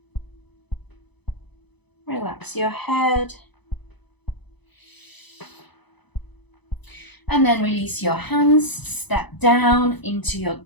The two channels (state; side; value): late; right; 0.99 ms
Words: Relax your head. And then release your hands, step down into your